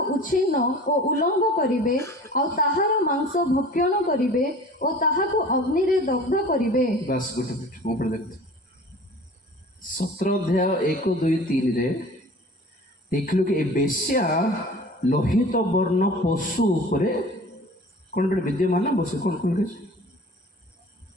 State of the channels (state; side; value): normal; both; correlation 0.43